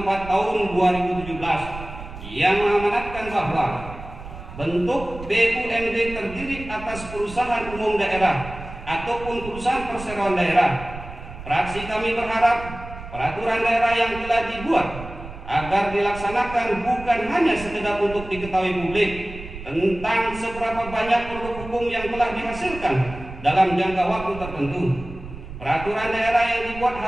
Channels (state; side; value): noise; right; rumble, 13 dB below the sound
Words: Tahun 2017 yang mengamanatkan bahwa bentuk BUMD terdiri atas perusahaan umum daerah ataupun perusahaan perseroan daerah. Fraksi kami berharap peraturan daerah yang telah dibuat agar dilaksanakan bukan hanya sekedar untuk diketahui publik tentang seberapa banyak produk hukum yang telah dihasilkan dalam jangka waktu tertentu. Peraturan daerah yang dibuat